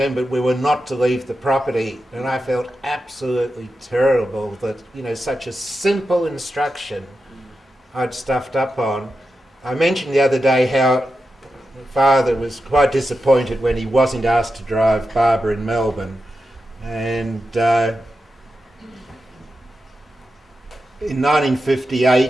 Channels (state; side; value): normal; both; correlation 0.89